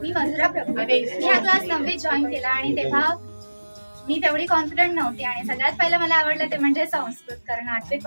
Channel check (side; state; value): both; inverted; correlation -1.00